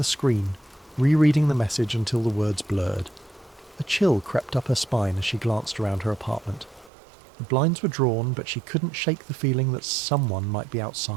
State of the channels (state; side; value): drops out; left; at 6.9 s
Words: screen, rereading the message until the words blurred. A chill crept up her spine as she glanced around her apartment. The blinds were drawn, but she couldn't shake the feeling that someone might be